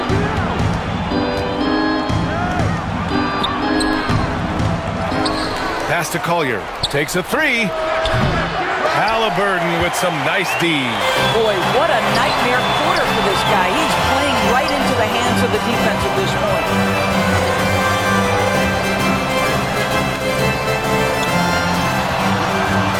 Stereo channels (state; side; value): identical; both; correlation 1.00